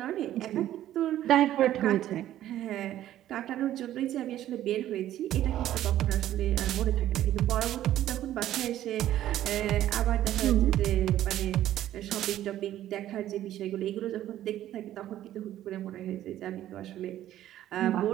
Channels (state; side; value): quieter; left; 12.8 dB